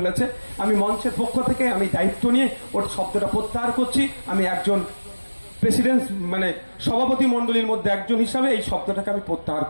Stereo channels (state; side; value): inverted; both; correlation -1.00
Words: আমি মঞ্চের পক্ষ থেকে আমি দায়িত্ব নিয়ে ওর শব্দটা প্রত্যাহার করছি। আমি একজন প্রেসিডেন্ট মানে সভাপতি মন্ডলীর মধ্যে একজন হিসাবে এই শব্দটাকে আমি প্রত্যাহার